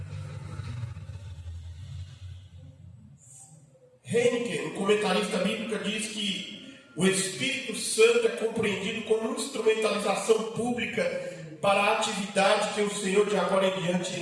Heineken, um comentarista bíblico, diz que o Espírito Santo é compreendido como instrumentalização pública para a atividade que o Senhor de agora em diante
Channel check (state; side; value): identical; both; correlation 1.00